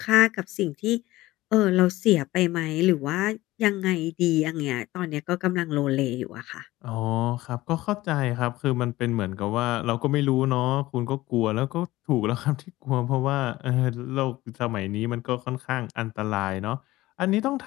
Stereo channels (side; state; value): right; quieter; 17.7 dB